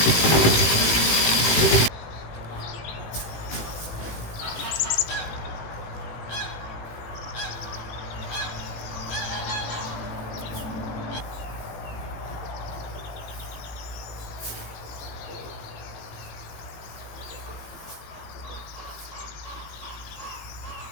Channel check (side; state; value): right; late; 18 ms